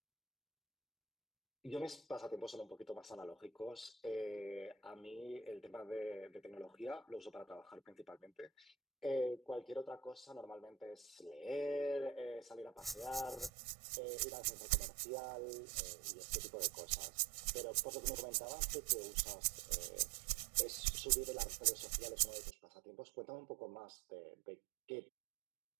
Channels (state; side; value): drops out; left; at 13.5 s